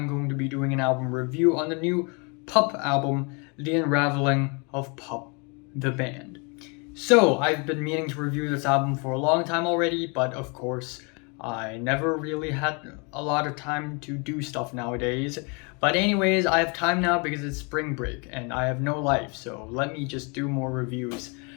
going to be doing an album review on the new PUP album, The Unraveling of PUP, the band. So, I've been meaning to review this album for a long time already, but of course, I never really had a lot of time to do stuff nowadays. But anyways, I have time now because it's spring break and I have no life, so let me just do more reviews.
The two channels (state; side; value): quieter; right; 32.7 dB